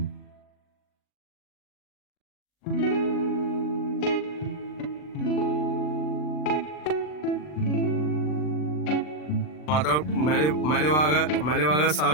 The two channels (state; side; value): late; right; 40 ms